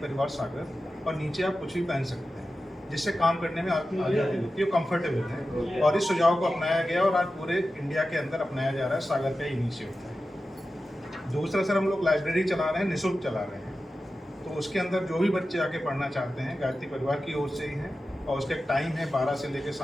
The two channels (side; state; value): both; normal; correlation 0.93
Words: सागर, और नीचे आप कुछ भी पहन सकते हैं, जिससे काम करने में आपकी आज़ादी होती है, कंफर्टेबल है। और इस सुझाव को अपनाया गया और आज पूरे इंडिया के अंदर अपनाया जा रहा है, सागर का इनिशिएटिव है। दूसरा सर, हम लोग लाइब्रेरी चला रहे हैं, निःशुल्क चला रहे हैं, तो उसके अंदर जो भी बच्चे आके पढ़ना चाहते हैं गायत्री परिवार की ओर से ही है और उसका टाइम है 12 से लेकर